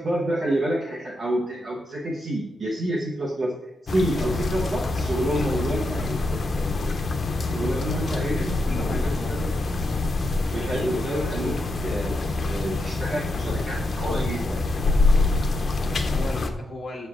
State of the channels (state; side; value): normal; both; correlation 0.84